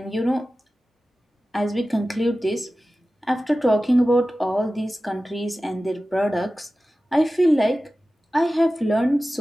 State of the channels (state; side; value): normal; both; correlation 0.95